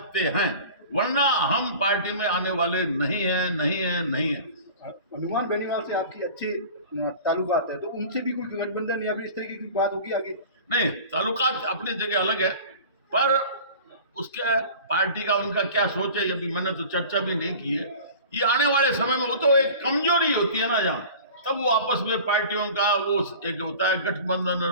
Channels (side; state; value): both; inverted; correlation -0.40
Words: हैं, वरना हम पार्टी में आने वाले नहीं हैं, नहीं हैं, नहीं हैं। हनुमान बेनीवाल से आपकी अच्छी ताल्लुकात है, तो उनसे भी कोई गठबंधन या फिर इस तरीके की बात होगी आगे? नहीं, ताल्लुकात अपनी जगह अलग है, पर उसके पार्टी का उनका क्या सोच है, अभी मैंने तो चर्चा भी नहीं की है। ये आने वाले समय में, वो तो एक कमजोरी होती है ना यहाँ, तब वो आपस में पार्टियों का वो एक होता है गठबंधन